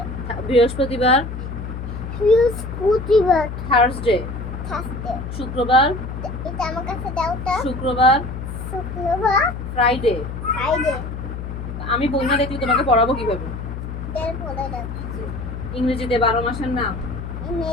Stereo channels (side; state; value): left; noise; hum, 7 dB below the sound